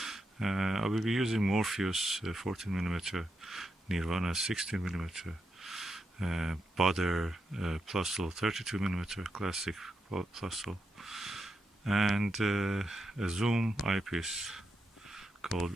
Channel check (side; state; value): both; normal; correlation 0.85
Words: I will be using Morpheus 14mm, Nirvana 16mm, Butter Plusl 32mm classic Plusl, and a Zoom eyepiece called